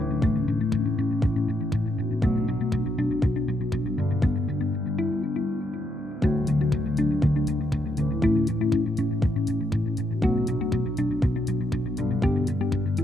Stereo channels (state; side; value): normal; both; correlation 0.78